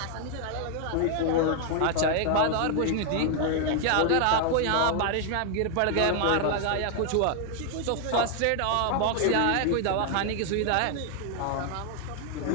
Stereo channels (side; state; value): both; different; correlation 0.00